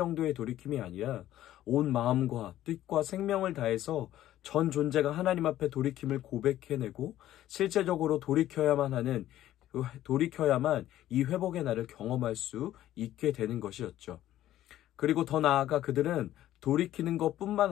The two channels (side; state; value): right; quieter; 13.3 dB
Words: 돌이킴이 아니라 온 마음과 뜻과 생명을 다해서 전 존재가 하나님 앞에 돌이킴을 고백해내고 실제적으로 돌이켜야만 이 회복의 날을 경험할 수 있게 되는 것이었죠. 그리고 더 나아가 그들은 돌이키는 것뿐만